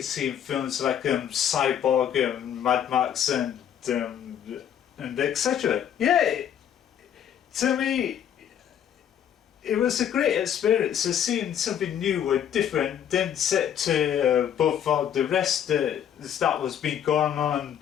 see in films like Cyborg and Mad Max and etc. Yeah, to me it was a great experience of seeing something new and different, then set to above all the rest that was been going on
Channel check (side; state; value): right; quieter; 9.4 dB